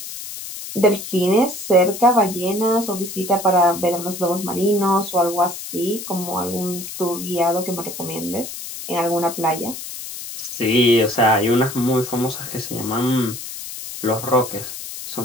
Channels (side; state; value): left; noise; hiss, 9 dB below the sound